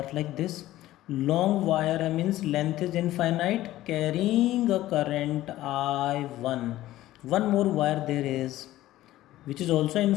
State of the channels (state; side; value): quieter; right; 15.2 dB